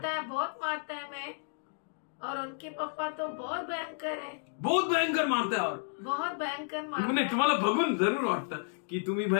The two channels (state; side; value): silent; right; digital silence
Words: मारता है मैं. और उनके पापा तो बहुत भयंकर है. बहुत भयंकर मारताय. और बहुत भयंकर मारता नाही तुम्हाला बघून जरूर वाटतं की तुम्ही